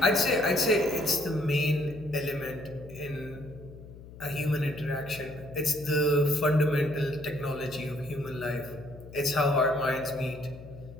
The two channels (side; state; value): left; noise; hum, 17 dB below the sound